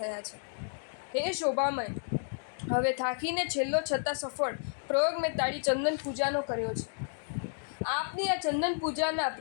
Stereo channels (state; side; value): silent; right; digital silence